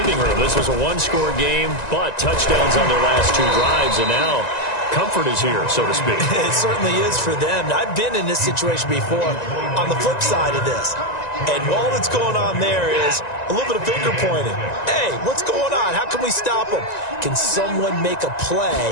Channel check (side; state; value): right; late; 1.9 ms